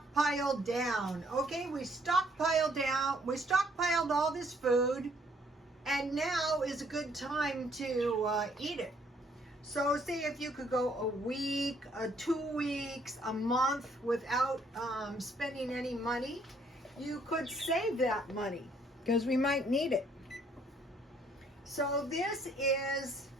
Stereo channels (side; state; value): both; normal; correlation 0.65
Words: down. Okay, we stockpiled all this food, and now is a good time to eat it. So say if you could go a week, 2 weeks, a month without spending any money, you could save that money because we might need it. So this is